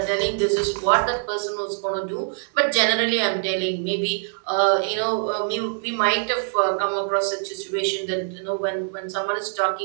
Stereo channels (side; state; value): left; silent; digital silence